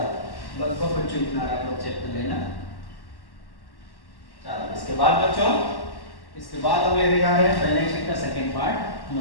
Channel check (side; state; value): right; late; 1.1 ms